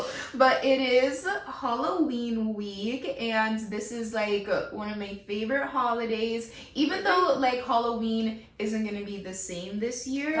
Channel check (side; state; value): both; identical; correlation 1.00